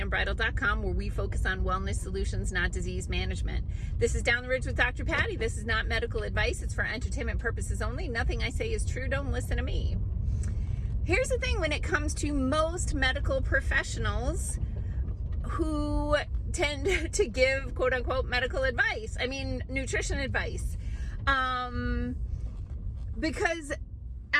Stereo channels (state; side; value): identical; both; correlation 1.00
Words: where we focus on wellness solutions, not disease management. This is Down the Ridge with Dr. Patty. This is not medical advice. It's for entertainment purposes only. Nothing I say is true. Don't listen to me. Here's the thing when it comes to most medical professionals who tend to give quote unquote medical advice. I mean, nutrition advice. Because